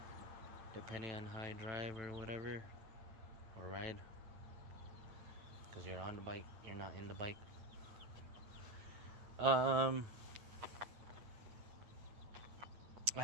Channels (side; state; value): left; late; 9.1 ms